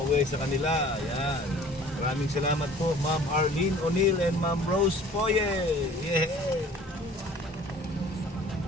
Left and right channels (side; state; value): both; normal; correlation 0.49